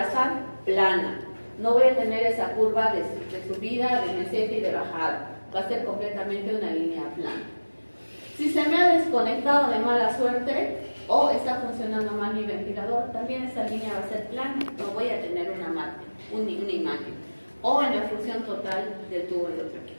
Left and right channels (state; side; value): inverted; both; correlation -1.00